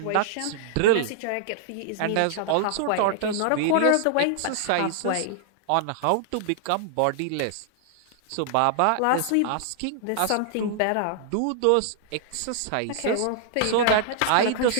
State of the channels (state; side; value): different; both; correlation -0.01